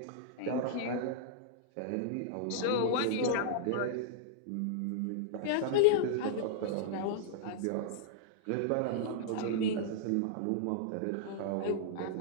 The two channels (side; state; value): both; different; correlation -0.01